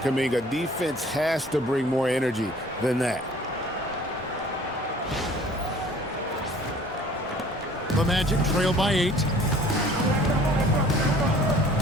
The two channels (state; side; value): normal; both; correlation 0.52